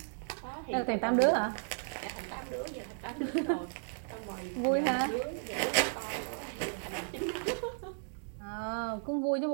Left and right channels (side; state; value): left; silent; 55 dB below the other